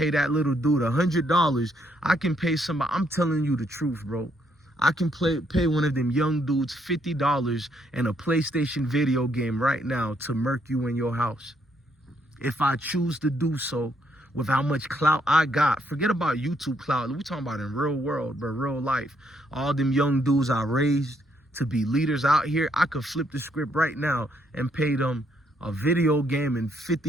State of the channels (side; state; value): both; normal; correlation 0.72